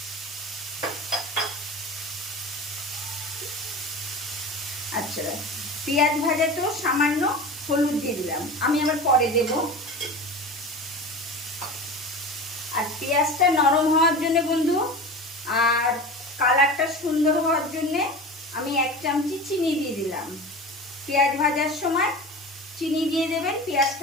আচ্ছা, পেঁয়াজ ভাজাতেও সামান্য হলুদ দিয়ে দিলাম, আমি আবার পরে দেব। আর পেঁয়াজটা নরম হওয়ার জন্য বন্ধু আর কালারটা সুন্দর হওয়ার জন্য আমি এক চামচি চিনি দিয়ে দিলাম। পেঁয়াজ ভাজার সময় চিনি দিয়ে দেবেন,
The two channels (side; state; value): both; normal; correlation 0.31